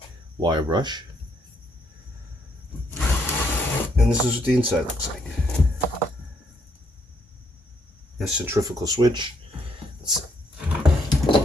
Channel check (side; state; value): both; normal; correlation 0.72